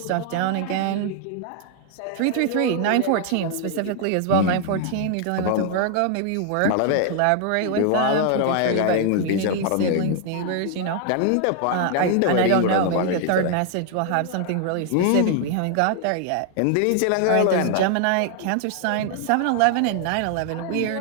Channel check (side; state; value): both; different; correlation 0.00